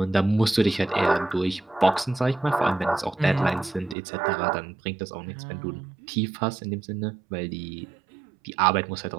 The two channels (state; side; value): drops out; left; at 4.0 s